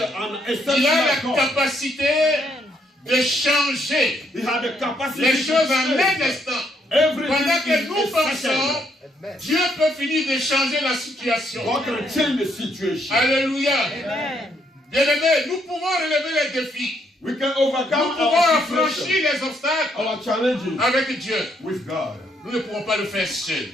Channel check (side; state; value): both; normal; correlation 0.73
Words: an Il a la exceptional God. capacité de changer He had the capacity les to choses en un change. instant. Everything Pendant que is nous pensons, essential. Dieu peut finir de changer la situation. God can change the situation. Alléluia. Bien-aimés, nous pouvons relever les défis. We can Nous overcome pouvons our affranchir situation, les obstacles our challenges avec Dieu. with God. Nous ne pouvons pas le faire seuls.